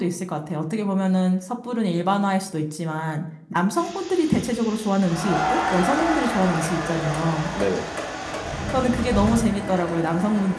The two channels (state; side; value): identical; both; correlation 1.00